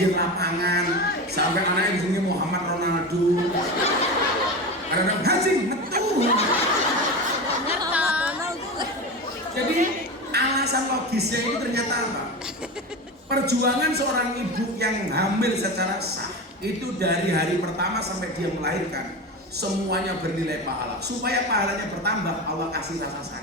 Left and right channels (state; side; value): normal; both; correlation 0.24